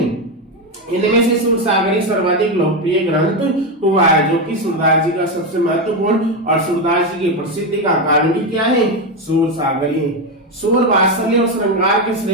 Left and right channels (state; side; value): normal; both; correlation 0.10